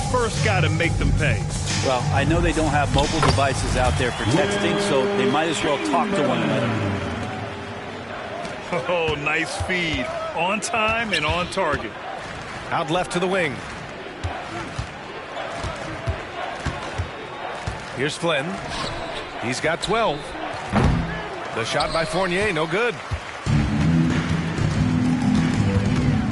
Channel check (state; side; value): identical; both; correlation 1.00